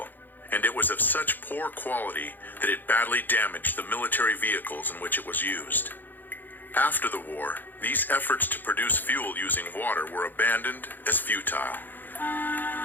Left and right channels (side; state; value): right; late; 0.088 ms